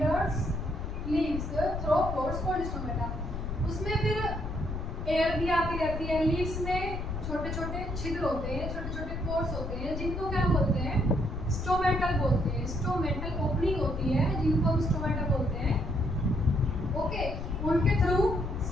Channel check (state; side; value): noise; left; rumble, 5 dB below the sound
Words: leaves through pores called stomata. उसमें फिर एयर भी आती रहती है, लीव्स में छोटे छोटे छिद्र होते हैं, छोटे छोटे पोर्स होते हैं, जिनको क्या बोलते हैं, स्टोमेटल बोलते हैं। स्टोमेटल ओपनिंग होती है जिनको हम स्टोमेटा बोलते हैं। ओके, उनके थ्रू